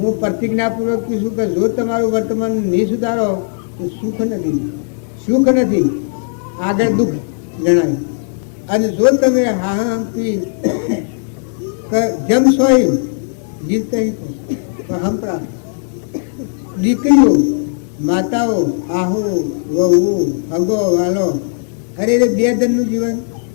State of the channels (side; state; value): right; silent; digital silence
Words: પ્રતિજ્ઞાપૂર્વક કહીશું કે જો તમારું વર્તમાન નહીં સુધારો તો સુખ નથી આગળ દુઃખ જણાય. અને જો તમે હાહમથી જમશો એમ જીવતા તો હંપરા દીકરીઓ, માતાઓ, આહુ, વહુ, હગો, વાલો અરે બે જણનું જીવન